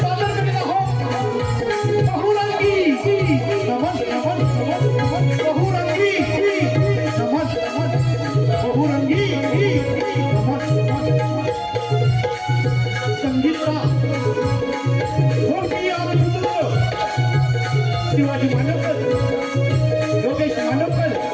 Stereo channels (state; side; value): identical; both; correlation 1.00